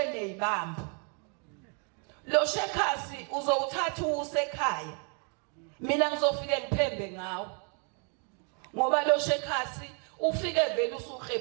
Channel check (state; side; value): quieter; left; 38.6 dB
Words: nezibambo. Lo Shekhasi uzowuthatha usekhaya. Mina ngizofike ngiphembe ngawo. Ngoba lo Shekhasi ufike vele